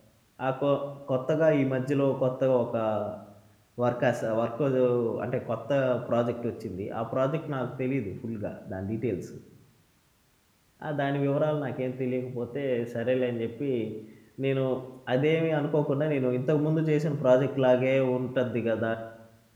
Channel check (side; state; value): both; identical; correlation 1.00